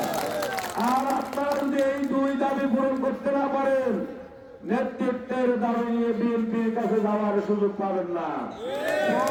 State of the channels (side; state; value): both; identical; correlation 1.00